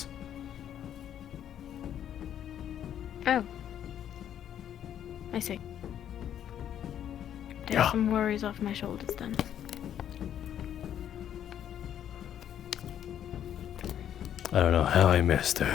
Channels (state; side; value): quieter; right; 10.1 dB